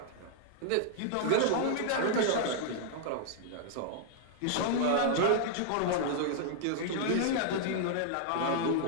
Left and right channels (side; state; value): both; different; correlation -0.01